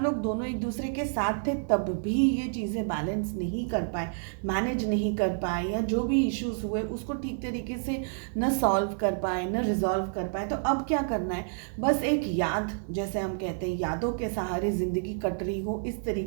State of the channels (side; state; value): left; silent; digital silence